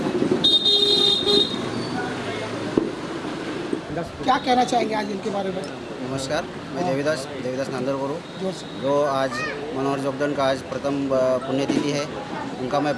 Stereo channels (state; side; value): identical; both; correlation 1.00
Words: क्या कहना चाहेंगे आज इनके बारे में? नमस्कार, मैं देवीदास नांदर बोलूँ। जोर से। जो आज मनोहर जोगदंड का आज प्रथम पुण्यतिथि है, उनका मैं